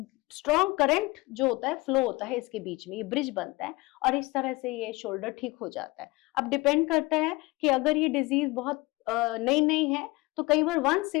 स्ट्रॉन्ग करंट जो होता है, फ्लो होता है इसके बीच में, ये ब्रिज बनता है और इस तरह से ये शोल्डर ठीक हो जाता है। अब डिपेंड करता है कि अगर ये डिजीज बहुत नई नई है तो कई बार वन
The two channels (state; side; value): quieter; right; 23.0 dB